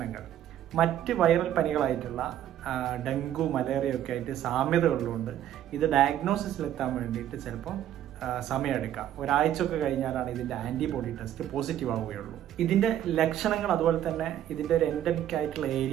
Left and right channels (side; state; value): left; quieter; 11.4 dB